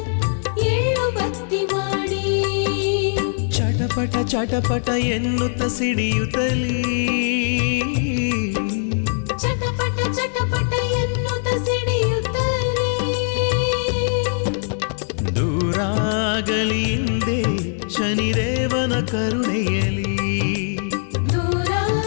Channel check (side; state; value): right; silent; 65 dB below the other